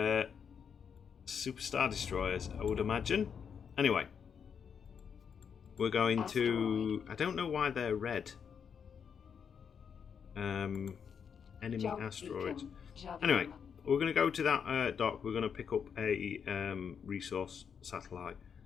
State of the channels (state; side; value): quieter; right; 7.1 dB